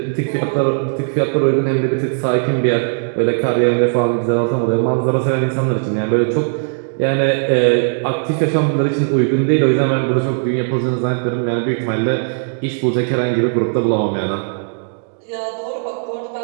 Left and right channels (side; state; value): left; silent; digital silence